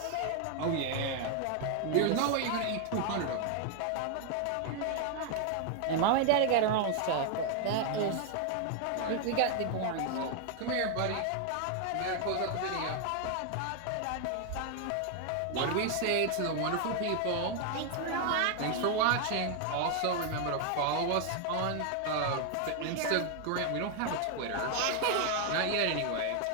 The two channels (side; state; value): both; different; correlation 0.01